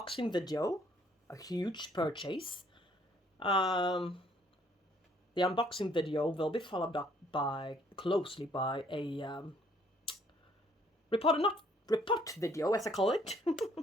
video, a huge purchase, the unboxing video will be followed up closely by a repot video, as I call it.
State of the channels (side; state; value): both; normal; correlation 0.63